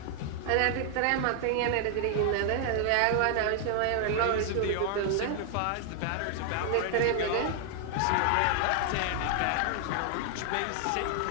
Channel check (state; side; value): different; both; correlation 0.00